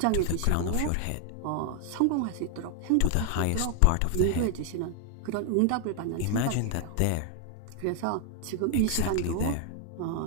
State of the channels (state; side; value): different; both; correlation 0.00